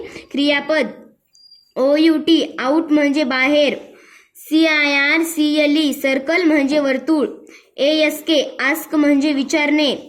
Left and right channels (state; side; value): identical; both; correlation 1.00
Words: क्रियापद, OUT आउट म्हणजे बाहेर, CIRCLE सर्कल म्हणजे वर्तुळ, ASK आस्क म्हणजे विचारणे,